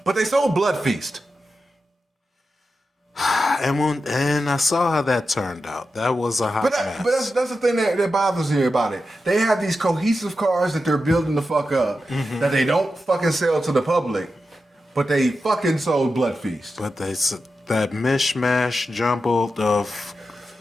But they sold Bloodfeast. And I saw how that turned out. That was a hot mess. But that's the thing that bothers me about it. They have these cohesive cars that they're building the fuck up that they don't fucking sell to the public, but they fucking sold Bloodfeast. But that mishmash jumbled of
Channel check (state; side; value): normal; both; correlation 0.90